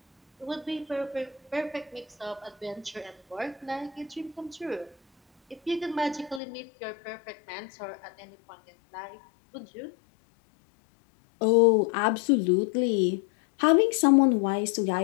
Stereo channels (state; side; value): drops out; right; at 6.4 s